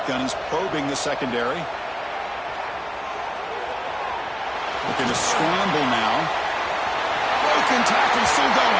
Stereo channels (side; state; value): both; identical; correlation 1.00